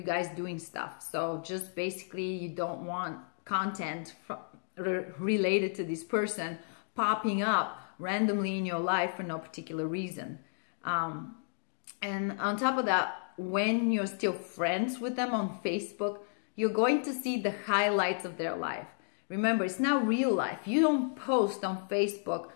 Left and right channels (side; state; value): right; silent; digital silence